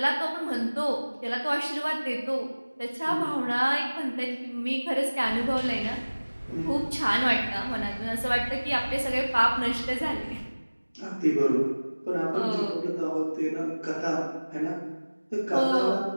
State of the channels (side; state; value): both; inverted; correlation -1.00